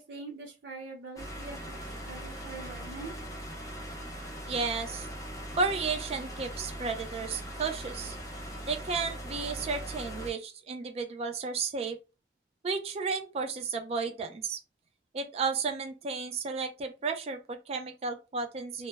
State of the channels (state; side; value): quieter; left; 3.7 dB